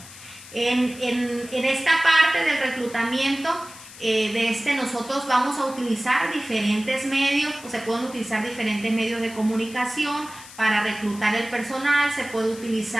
En esta parte del reclutamiento, nosotros vamos a utilizar diferentes medios, pues se pueden utilizar diferentes medios de comunicación para reclutar el personal, se puede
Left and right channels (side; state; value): left; noise; hiss, 17 dB below the sound